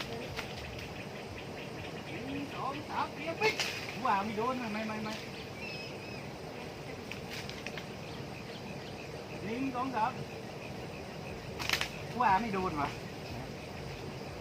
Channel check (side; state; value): both; identical; correlation 1.00